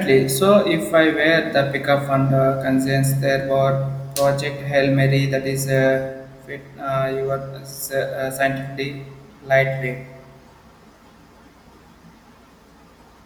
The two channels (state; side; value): identical; both; correlation 1.00